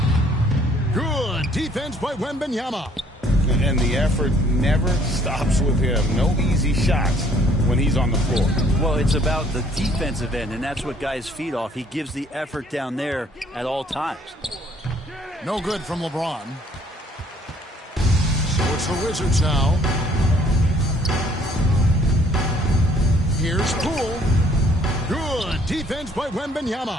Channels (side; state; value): both; normal; correlation 0.61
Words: Good defense by Wembanyama. And the effort never stops with him. No easy shots when he's on the floor. Well, it's about the defensive end, and that's what guys feed off. He gives the effort down there at all times. No good from LeBron. So it's the Wizards now. Here's Poole. Good defense by